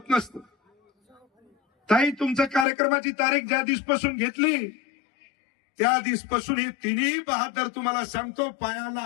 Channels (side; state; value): right; drops out; at 2.7 s